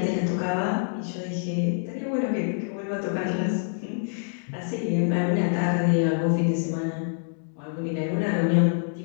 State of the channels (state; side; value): silent; right; digital silence